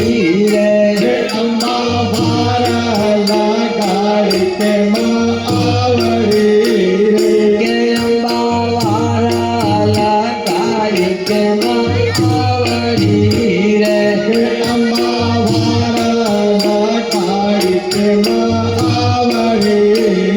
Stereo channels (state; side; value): identical; both; correlation 1.00